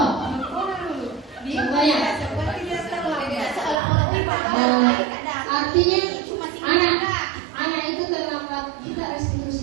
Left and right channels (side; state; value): left; drops out; at 3.8 s